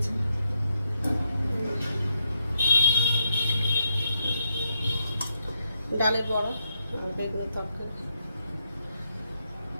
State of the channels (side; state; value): both; inverted; correlation -0.82